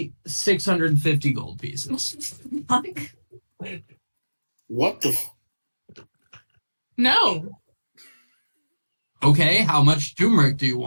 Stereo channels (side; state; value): both; inverted; correlation -1.00